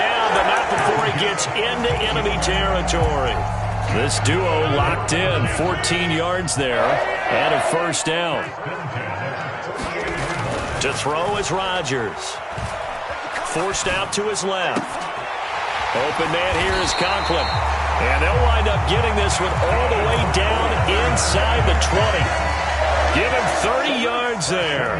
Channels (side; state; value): both; identical; correlation 1.00